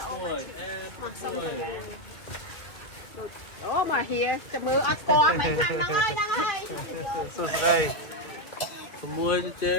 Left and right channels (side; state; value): right; late; 1.9 ms